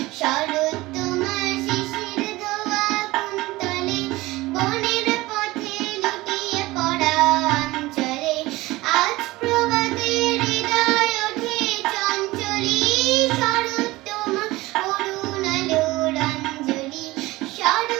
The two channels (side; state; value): left; quieter; 19.6 dB